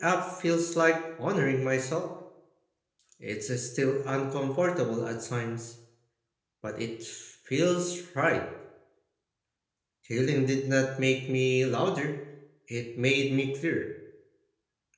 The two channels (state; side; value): identical; both; correlation 1.00